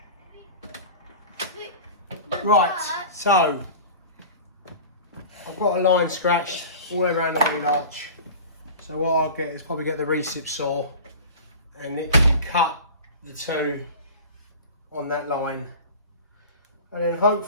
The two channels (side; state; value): both; inverted; correlation -0.36